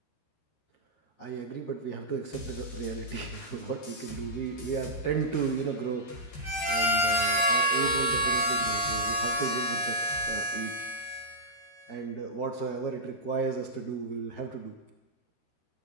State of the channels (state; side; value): late; right; 13 ms